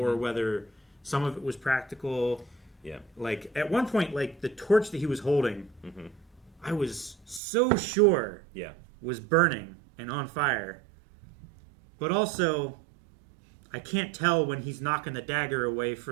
whether some of it was practical. Yeah. Like at one point, like the torch that he was holding, I was so sure was burning and on fire. But also, I can't tell when he's knocking the dagger away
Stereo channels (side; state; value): left; drops out; at 7.4 s